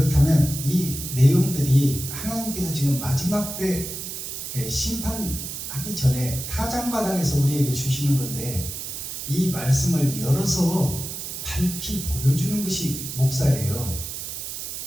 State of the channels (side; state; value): right; noise; hiss, 7 dB below the sound